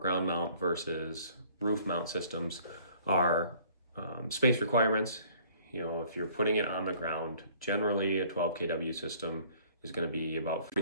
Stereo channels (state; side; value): inverted; both; correlation -0.56